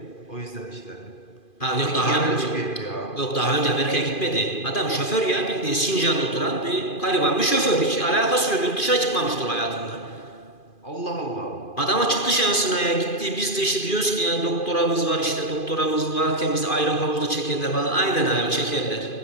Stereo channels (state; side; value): late; right; 2.4 ms